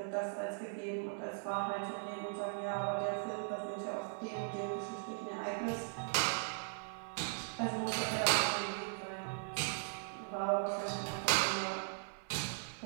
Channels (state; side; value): silent; left; 52 dB below the other